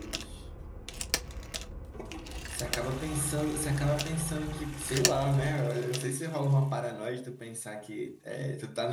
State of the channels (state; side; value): identical; both; correlation 1.00